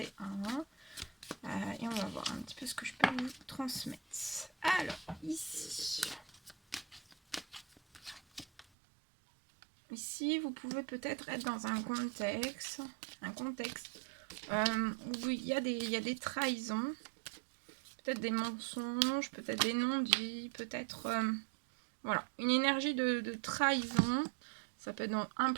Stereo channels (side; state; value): left; drops out; at 8.7 s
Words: Et on va voir un petit peu ce que je peux vous transmettre. Alors, ici... Ici, vous pouvez peut-être être dans un contexte où il y a des trahisons, peut-être des mensonges, peut-être des non-dits, peut-être voilà, une énergie de trahison. Ça peut être dans